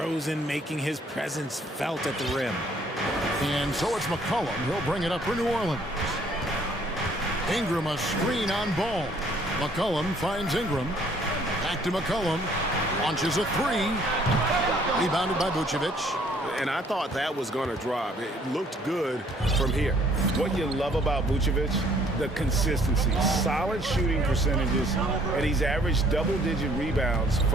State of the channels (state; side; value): normal; both; correlation 0.61